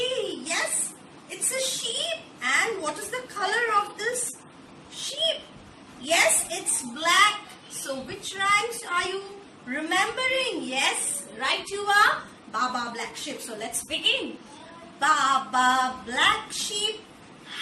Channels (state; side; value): identical; both; correlation 1.00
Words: Yes, it's a sheep. And what is the color of this sheep? Yes, it's black. So which rhymes are you remembering? Yes, right you are. Baa Baa Black sheep. So let's begin. Baa Baa Black sheep,